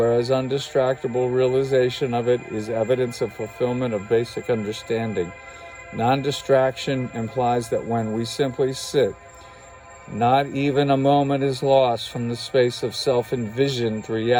undistractable realization of it is evidence of fulfillment of basic understanding. Non-distraction implies that when we simply sit, not even a moment is lost from the space of self-envisioned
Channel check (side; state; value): both; identical; correlation 1.00